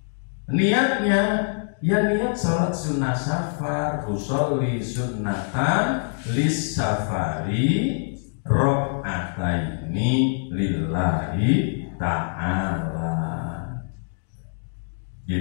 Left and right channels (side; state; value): right; silent; digital silence